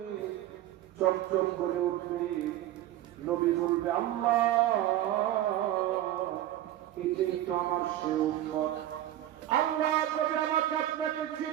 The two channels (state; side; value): quieter; left; 13.4 dB